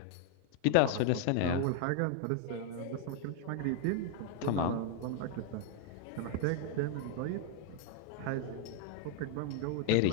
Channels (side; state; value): both; different; correlation 0.00